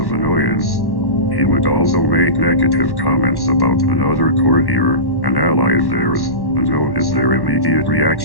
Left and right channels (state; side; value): late; right; 1.1 ms